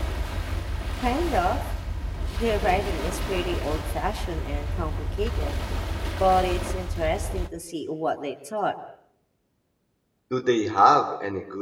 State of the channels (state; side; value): identical; both; correlation 1.00